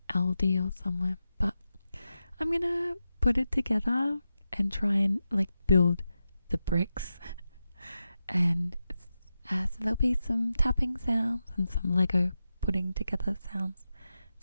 Aldi or somewhere, but I'm gonna put it together and try and like build the bricks. And so there'll be some tapping sounds and some Lego putting together sounds,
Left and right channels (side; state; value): both; inverted; correlation -0.90